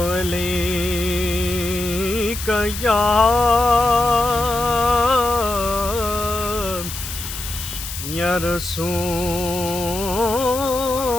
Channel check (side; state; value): left; noise; hiss, 8 dB below the sound